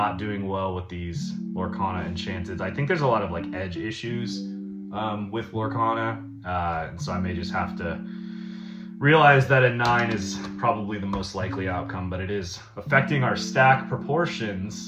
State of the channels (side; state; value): both; identical; correlation 1.00